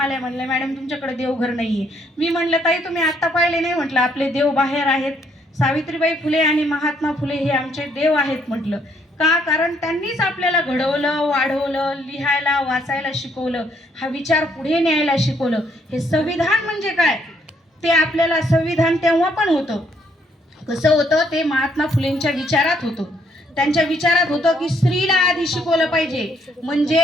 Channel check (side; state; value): both; normal; correlation 0.69